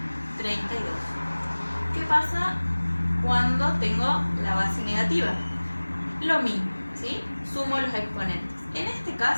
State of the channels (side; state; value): both; inverted; correlation -1.00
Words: 32. ¿Qué pasa cuando tengo la base negativa? Lo mismo, ¿sí? Sumo los exponentes. En este